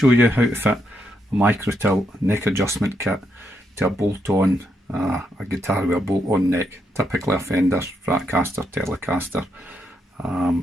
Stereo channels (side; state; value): both; normal; correlation 0.79